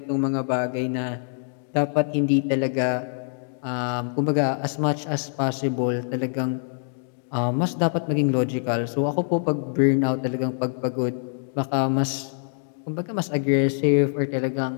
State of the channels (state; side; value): silent; right; 62 dB below the other